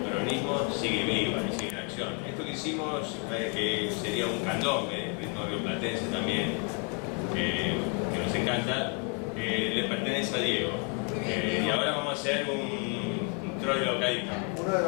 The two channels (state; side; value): quieter; right; 36.2 dB